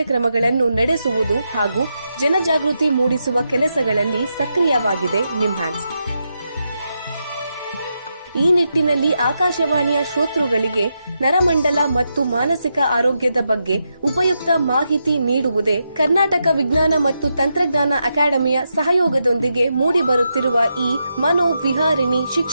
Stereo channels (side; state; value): both; inverted; correlation -0.85